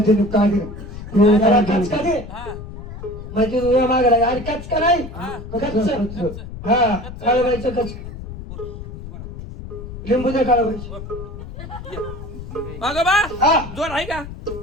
त्याला कचका दे हा माहिती तुझ्या मागला अरे कचका नाही कच्च हा काळाबाईचं कच लिंबू दे काळाबाईचं अगं बा हा जोर आहे का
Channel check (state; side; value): noise; left; rumble, 11 dB below the sound